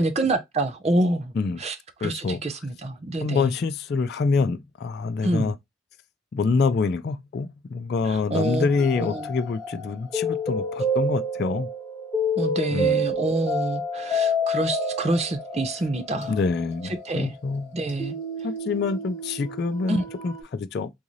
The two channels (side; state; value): both; normal; correlation 0.60